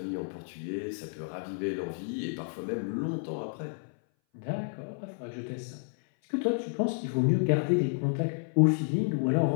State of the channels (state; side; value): silent; right; 57 dB below the other